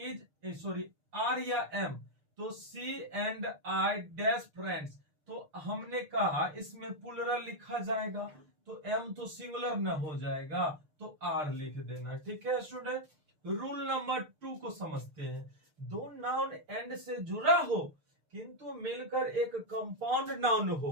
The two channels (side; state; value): left; late; 6.6 ms